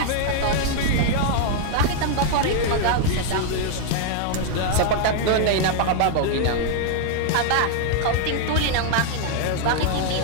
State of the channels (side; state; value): both; different; correlation 0.00